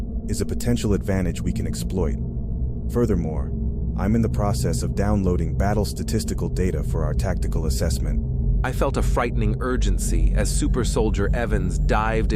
is a potential advantage we can exploit. Furthermore, I'm in the process of downloading battle statistical data for our tactical assessment. I felt a frightening urgency as Super Soldier Evans dived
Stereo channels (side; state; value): both; identical; correlation 1.00